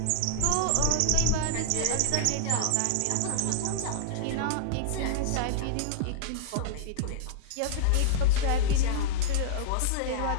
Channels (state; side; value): different; both; correlation -0.01